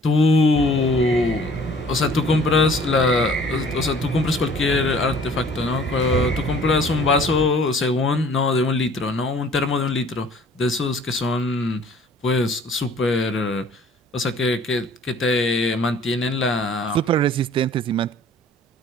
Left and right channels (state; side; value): normal; both; correlation 0.53